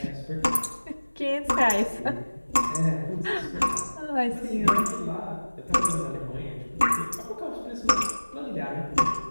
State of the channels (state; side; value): inverted; both; correlation -1.00